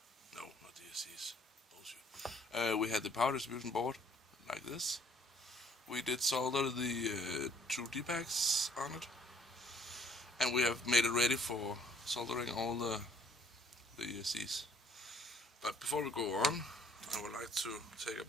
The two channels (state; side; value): normal; both; correlation 0.60